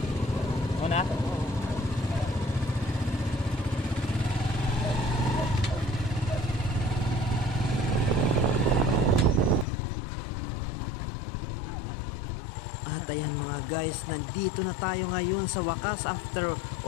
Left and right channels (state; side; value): drops out; right; at 9.7 s